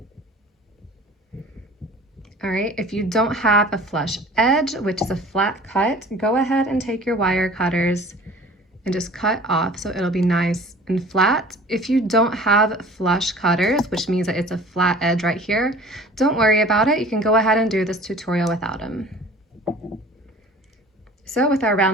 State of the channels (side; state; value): both; normal; correlation 0.45